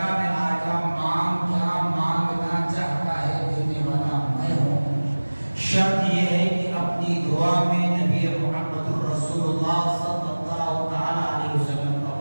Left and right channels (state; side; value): inverted; both; correlation -1.00